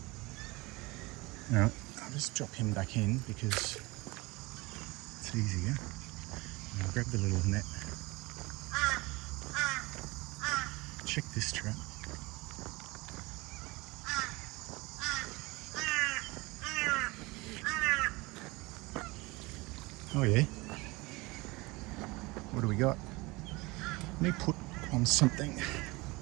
Alright, I'll just drop him back in because it's easier. And I'll grab the little net. Check this trap. Oh yeah. What do we got? Let me put on something.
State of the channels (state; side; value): quieter; left; 23.5 dB